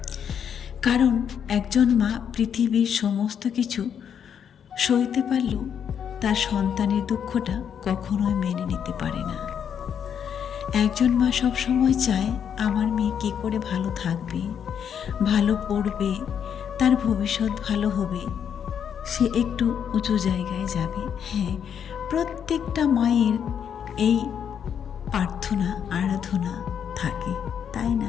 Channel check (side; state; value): right; quieter; 8.1 dB